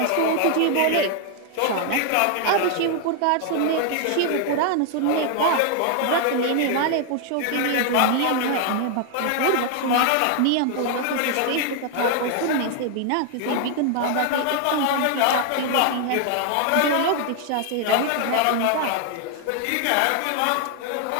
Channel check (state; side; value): different; both; correlation 0.00